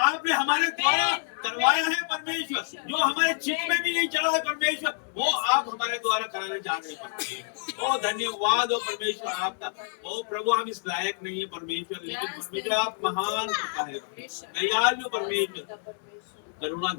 हमारे द्वारा करवाया है परमेश्वर। जो हमारे चित्त में भी नहीं चला है परमेश्वर, वो आप हमारे द्वारा कराने जा रहे हैं परमेश्वर। ओ धन्यवाद हो परमेश्वर आपका। ओ प्रभु हम इस लायक नहीं है परमेश्वर, लेकिन परमेश्वर आप महान कृपा है, दयालु परमेश्वर,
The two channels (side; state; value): right; silent; 60 dB below the other